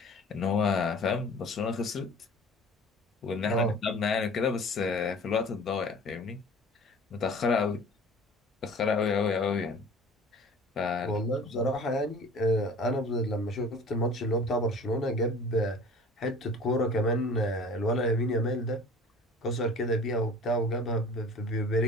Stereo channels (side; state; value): both; normal; correlation 0.44